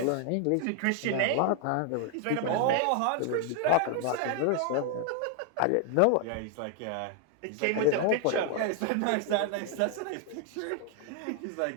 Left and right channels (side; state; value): both; different; correlation 0.00